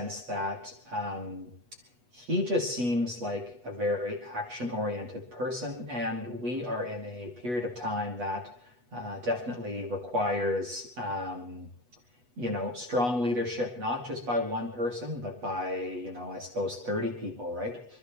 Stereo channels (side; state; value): left; late; 8.1 ms